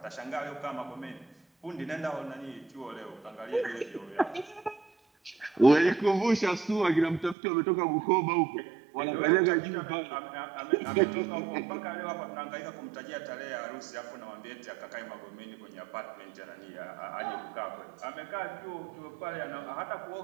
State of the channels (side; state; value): left; drops out; at 7.4 s